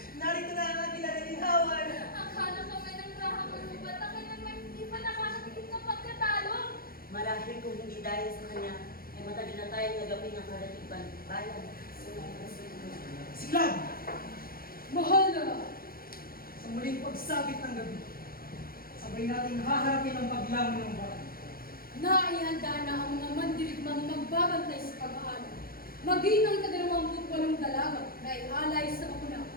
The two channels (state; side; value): late; right; 0.43 ms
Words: Narito na ang ating nanalinhawan. Akala kami ng rahang manubat na naman hindi pa nakakatikip ng pagkatalo. Marahil kung hindi dahil sa kanya, ay matagal na tayong nagapin ng kalatiban bayan. Si Clam! Mahal na! Sa muling pagsapit ng gabi, sabay nating haharapin ang paglangon ng buwan. Naihanda na ang mga mandirigmang magbabantay sa pag-aaral. Maging ang 28 dalaga na ialay sa bakuna.